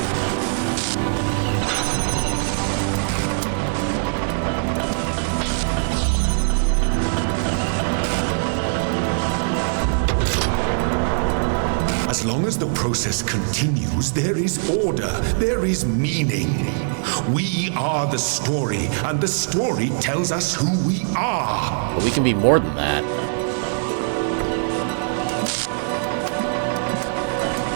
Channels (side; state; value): left; silent; digital silence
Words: As long as the process continues, there is order, there is meaning. We are the story, and the story tells us who we are. But we can be more than that.